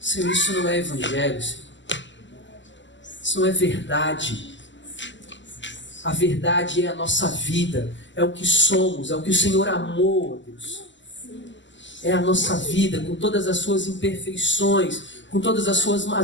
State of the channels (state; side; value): late; right; 0.54 ms